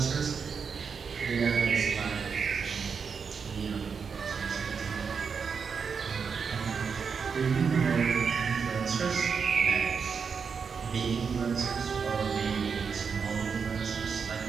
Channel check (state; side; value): quieter; left; 5.9 dB